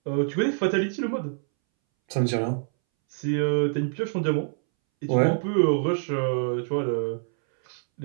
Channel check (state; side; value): silent; left; 61 dB below the other